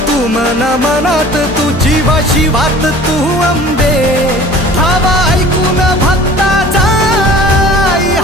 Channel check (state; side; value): normal; both; correlation 0.45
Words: तू मना मनात तू जीवाशी वात तू अंबे धावा ऐकून भक्ताचा आई